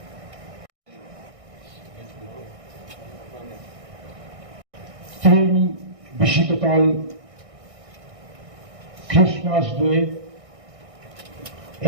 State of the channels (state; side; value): late; left; 1.6 ms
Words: বিশিতকাল ক্রিসমাস ডে,